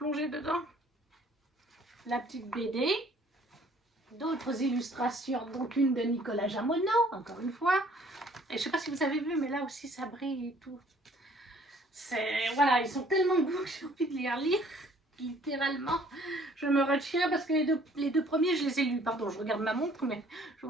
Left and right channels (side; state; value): both; normal; correlation 0.58